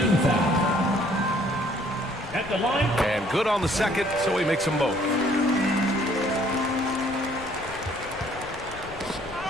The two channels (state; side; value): noise; left; rumble, 18 dB below the sound